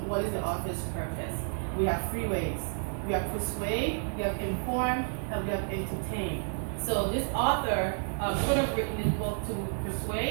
is the author's purpose. We have three ways. We have persuade, we have inform, and we have entertain. So this author could have written this book to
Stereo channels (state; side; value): silent; left; 57 dB below the other